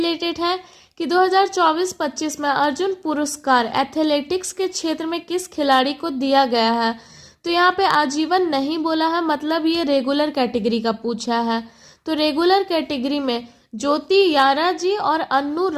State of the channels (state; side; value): identical; both; correlation 1.00